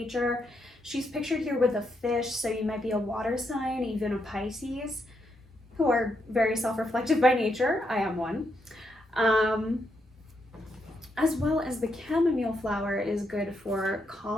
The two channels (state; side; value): normal; both; correlation 0.80